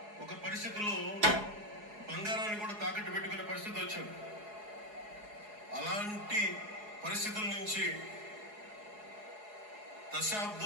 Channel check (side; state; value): left; late; 4.8 ms